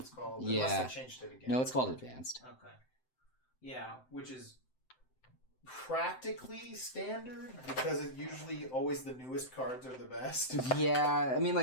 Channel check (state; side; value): late; right; 7.8 ms